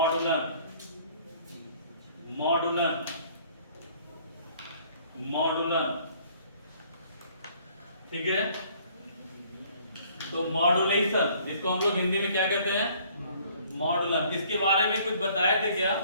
ठीक है। तो मॉड्यूलेशन जिसको हम लोग हिंदी में क्या कहते हैं, मॉड्यूलन। इसके बारे में कुछ बताए थे क्या,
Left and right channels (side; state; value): both; inverted; correlation -0.58